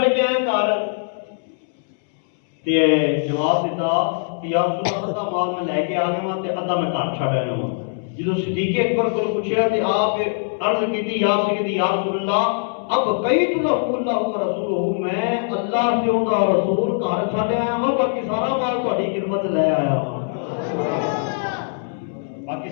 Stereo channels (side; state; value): right; silent; 65 dB below the other